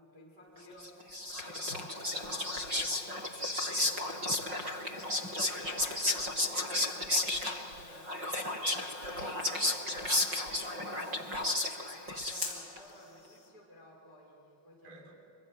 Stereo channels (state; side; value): late; left; 5.5 ms